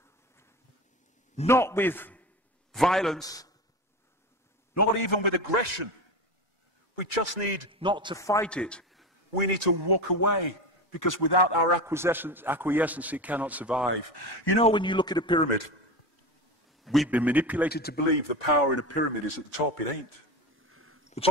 Not with violence, not even with aggression. We just need not to fight it. We need to walk away, because without our acquiescence, it cannot survive. You know, when you look at a pyramid, we've been manipulated to believe the power in a pyramid is at the top. It ain't. The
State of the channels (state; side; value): normal; both; correlation 0.24